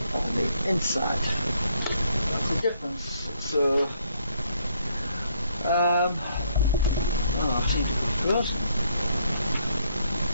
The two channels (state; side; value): inverted; both; correlation -0.69